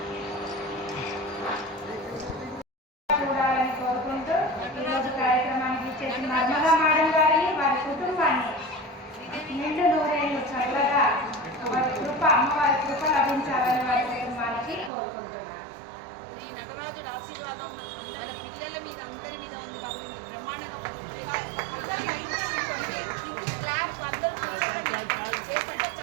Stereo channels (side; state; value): left; drops out; at 14.9 s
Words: చూడాలని కోరుకుంటూ ఈరోజు కార్యక్రమానికి ఇచ్చేసిన నర్మదా మేడం గారిని వారి కుటుంబాన్ని నిండు నూరేళ్ళు చల్లగా వారి కృప అమ్మవారి కృప లభించాలని వారి కుటుంబానికి కోరుకుంటున్నాను. ఈ నటరాజుడు ఆశీర్వాదం మన పిల్లల మీద అందరి మీద ఉంది కాబట్టి బ్రహ్మాండంగా